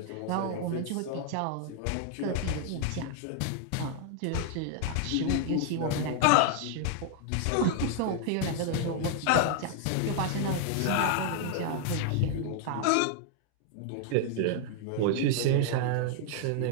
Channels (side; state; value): both; different; correlation 0.00